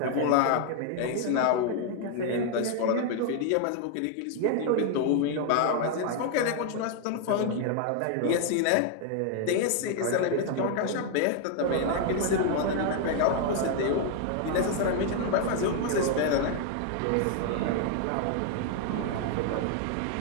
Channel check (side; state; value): both; different; correlation 0.00